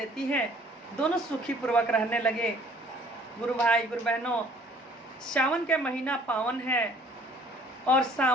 है। दोनों सुखी पूर्वक रहने लगे। गुरु भाई गुरु बहनों, सावन के महीना पावन है और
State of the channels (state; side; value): normal; both; correlation 0.56